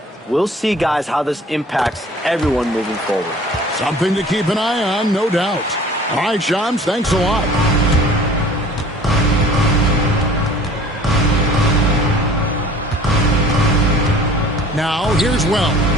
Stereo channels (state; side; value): normal; both; correlation 0.48